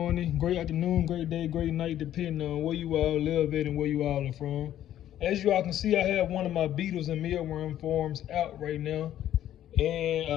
great afternoon, great day, great night, depending on where you all live at and where you all are from. As you all can see, I have one of my Beetles and Mealworm farms out right now. And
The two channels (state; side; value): quieter; right; 11.8 dB